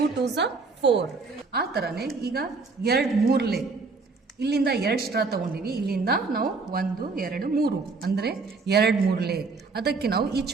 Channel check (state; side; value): quieter; left; 4.2 dB